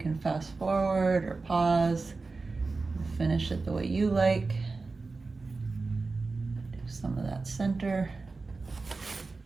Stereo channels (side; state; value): left; quieter; 3.9 dB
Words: fast forward or pause. Finish it the way you like. Do some of that center.